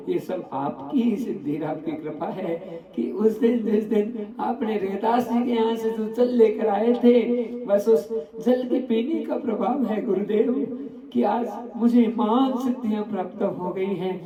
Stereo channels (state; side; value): identical; both; correlation 1.00